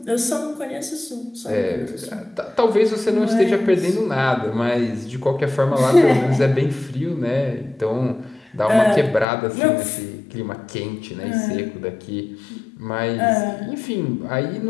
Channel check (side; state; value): right; drops out; at 9.2 s